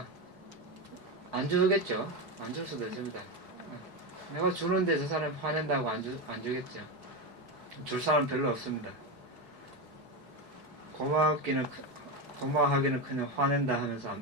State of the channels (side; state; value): left; late; 4.5 ms